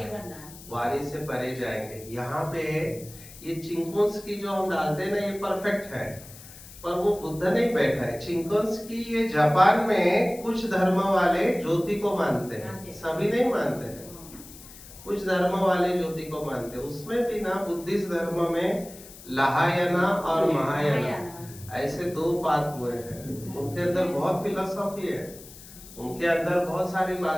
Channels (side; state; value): left; noise; hiss, 18 dB below the sound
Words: वाणी से परे जाएंगे। यहाँ पे ये चिंकोन्स्की जो हम डालते हैं ना, ये परफेक्ट है, पर वो बुद्ध नहीं बैठा है। चिंकोन्स्की ये जापान में कुछ धर्म वाले ज्योति को मानते हैं, सभी नहीं मानते हैं, कुछ धर्म वाले ज्योति को मानते हैं। उसमें भी ना बुद्धिस्ट धर्म में लहायाना और महायाना ऐसे दो पात हुए हैं। उनके अंदर बहुत फिलोसॉफी है, उनके अंदर बहुत सारी